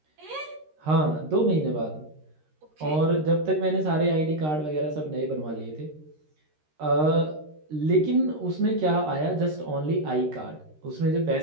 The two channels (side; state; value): left; late; 13 ms